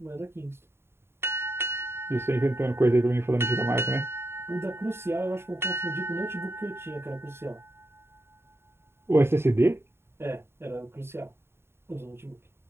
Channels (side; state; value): left; late; 0.12 ms